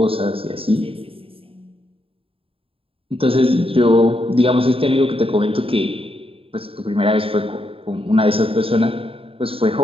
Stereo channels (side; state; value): left; late; 0.27 ms